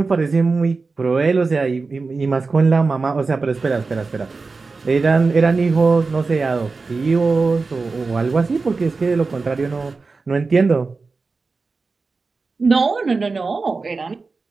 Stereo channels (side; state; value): left; quieter; 4.1 dB